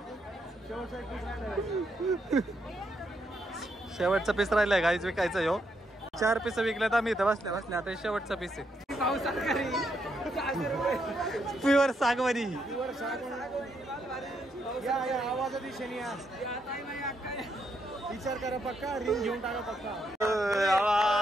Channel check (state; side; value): normal; both; correlation 0.78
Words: शेवटचा पीस राहिलाय गाईच विकायचं यो. 4 पीस विकल्यात आम्ही इथं बसल्या बसल्या. आता शेवटचा पीस आहे. प्युअर सागवानी. या आवाजाच्या दिशेने या. विचार करा पक्का. रिंग घेऊन टाका पक्का.